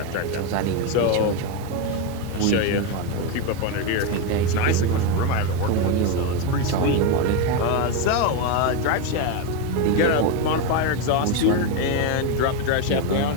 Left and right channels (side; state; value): both; different; correlation 0.04